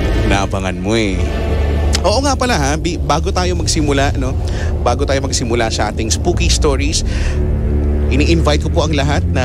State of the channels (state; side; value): identical; both; correlation 1.00